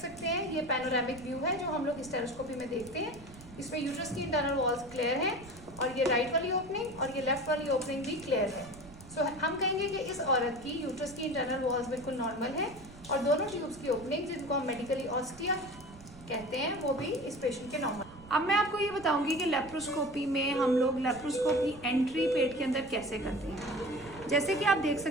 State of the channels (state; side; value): noise; right; rumble, 19 dB below the sound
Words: हैं ये पैनोरामिक व्यू है जो हम लोग हिस्टेरोस्कोपी में देखते हैं। इसमें यूट्रस की इंटरनल वॉल्स क्लियर हैं और ये राइट वाली ओपनिंग और ये लेफ्ट वाली ओपनिंग भी क्लियर है। सो हम कहेंगे कि इस औरत की यूट्रस की इंटरनल वॉल्स बिल्कुल नॉर्मल है और दोनों ट्यूब्स की ओपनिंग जिनको हम मेडिकली ऑस्टिया कहते हैं वो भी इस पेशेंट के नॉर्मल। अब मैं आपको ये बताऊंगी कि लेप्रोस्कोपी में हम लोग लेप्रोस्कोप की एंट्री पेट के अंदर कैसे करते हैं। जैसे कि आप देख